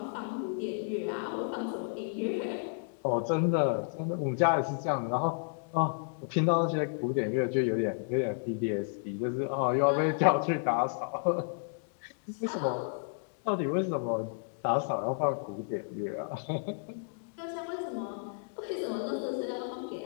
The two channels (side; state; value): right; silent; digital silence